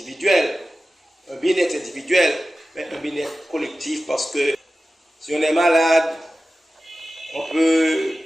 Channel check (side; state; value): both; normal; correlation 0.95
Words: un bien-être individuel, mais un bien-être collectif, parce que si on est malade, on peut